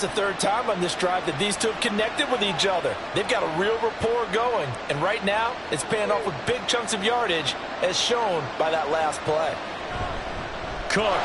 the third time on this drive that these two have connected with each other. They've got a real rapport going. And right now, it's paying off with big chunks of yardage, as shown by that last play.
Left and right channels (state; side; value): identical; both; correlation 1.00